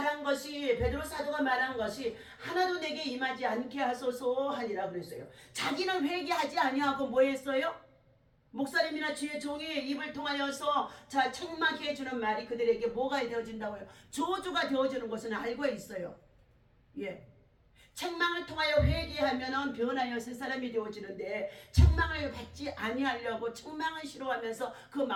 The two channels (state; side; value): identical; both; correlation 1.00